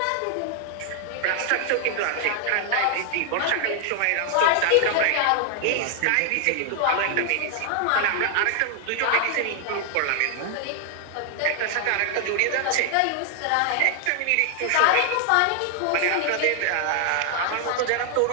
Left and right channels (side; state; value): both; different; correlation 0.00